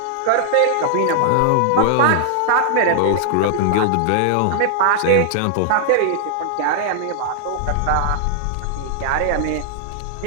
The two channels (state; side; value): different; both; correlation -0.01